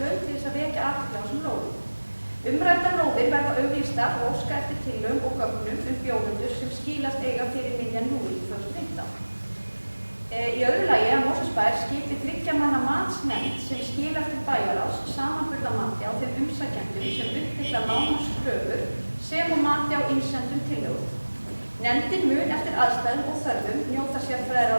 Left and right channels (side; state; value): both; inverted; correlation -1.00